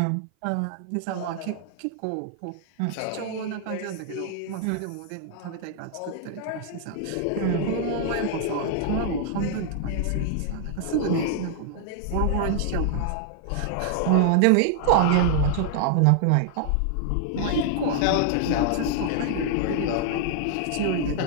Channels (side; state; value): both; different; correlation 0.00